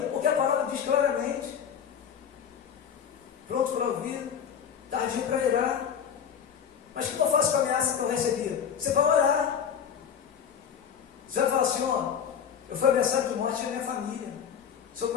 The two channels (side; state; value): right; quieter; 8.0 dB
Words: Porque a palavra diz claramente: pronto para ouvir, tardio para irar. Mas o que eu faço com a ameaça que eu recebi? Você vai orar. Você vai falar: Senhor, eu fui ameaçado de morte da minha família. O Senhor